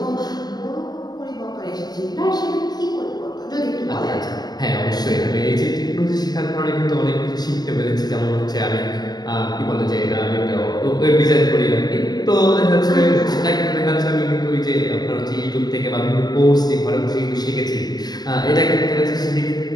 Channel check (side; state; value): right; late; 0.19 ms